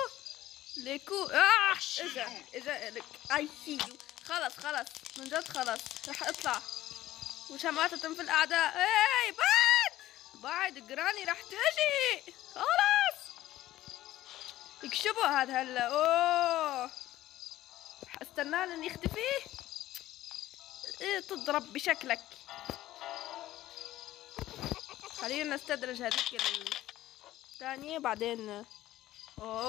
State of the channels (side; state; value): right; quieter; 14.8 dB